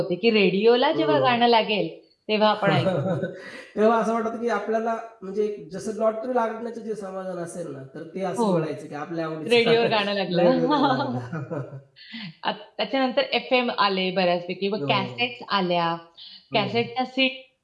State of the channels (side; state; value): both; identical; correlation 1.00